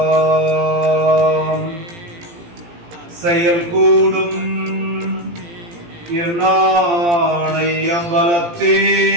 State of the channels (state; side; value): late; left; 17 ms